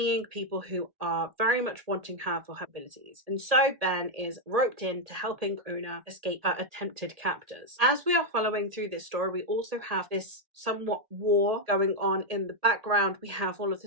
people who are very much wanting her for her abilities. And so Ben is roped into helping Una escape her attempted captors. As we are following through this story, we also have this somewhat war going on in the background. We have all of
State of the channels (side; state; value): left; late; 1.8 ms